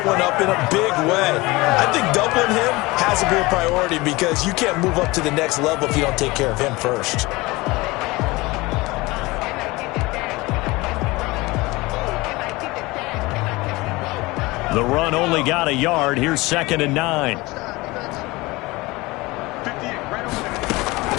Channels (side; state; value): right; quieter; 22.1 dB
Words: one up in a big way. I think doubling him has to be a priority because you can't move up to the next level if you don't take care of him first. The run only got a yard. Here's 2nd and 9.